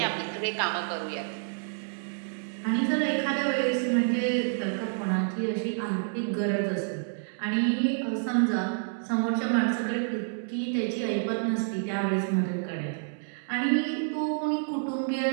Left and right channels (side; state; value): left; silent; digital silence